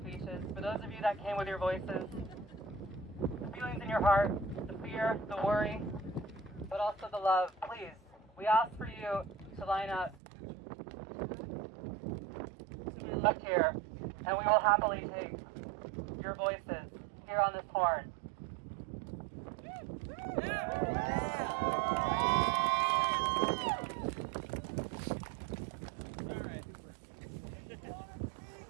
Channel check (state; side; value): drops out; left; at 10.2 s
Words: for those of you that came with your voices, the feelings in your heart, the fear, the worry, but also the love, please, we ask for you to line up to my left here, and we will happily take your voices here on this horn.